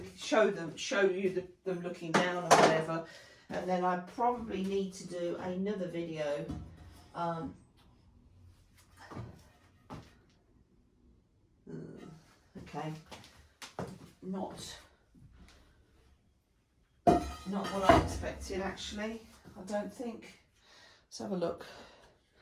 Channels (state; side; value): identical; both; correlation 1.00